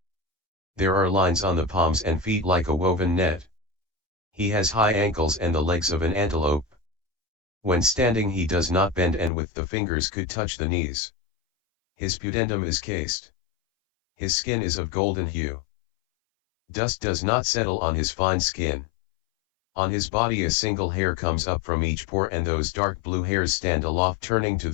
There are lines on the palms and feet like a woven net. He has high ankles and the legs of an antelope. When standing he does not bend and with the fingers could touch the knees. His pudendum is cased. His skin is of golden hue. Dust does not settle on his fine skin. On his body a single hair comes up from each pore and those dark blue hairs stand aloft turning to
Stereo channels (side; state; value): right; drops out; at 9.3 s